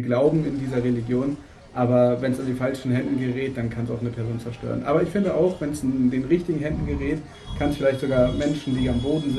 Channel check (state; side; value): identical; both; correlation 1.00